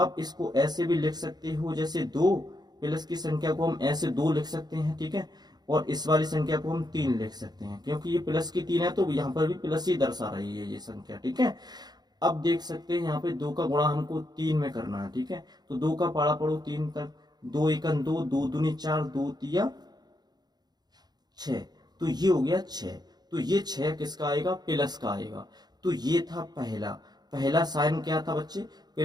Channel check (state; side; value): late; left; 0.20 ms